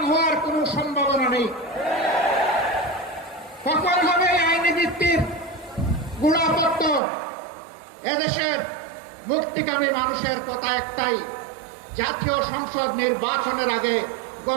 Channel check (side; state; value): left; drops out; at 7.0 s